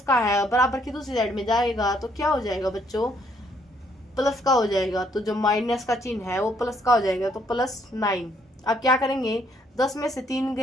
का है बराबर की दूसरी साइड में जाएगा तो क्या हो जाएगा बच्चों प्लस का हो जाएगा, तो जो माइनस का चिन्ह है वो प्लस का हो जाएगा, तो प्लस 9। अब क्या करेंगे 10 में से 3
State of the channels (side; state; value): both; normal; correlation 0.69